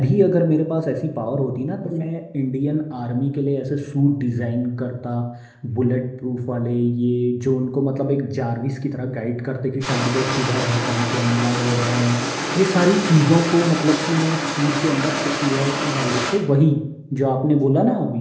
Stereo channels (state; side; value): identical; both; correlation 1.00